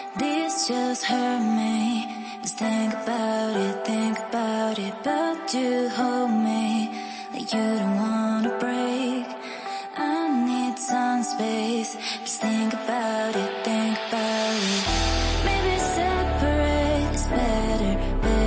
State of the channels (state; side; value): identical; both; correlation 1.00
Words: This just hurt me. Just think about it, but you hold me like you don't wanna break. I need some space. Just think about it, Maybe separate is better,